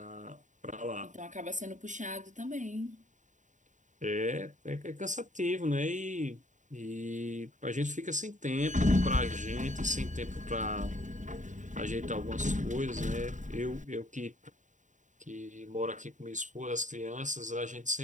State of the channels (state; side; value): late; left; 0.36 ms